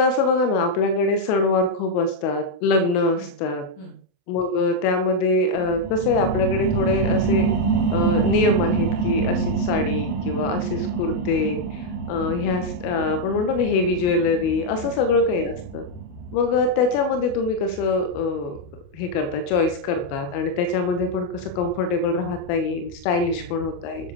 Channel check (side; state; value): right; late; 28 ms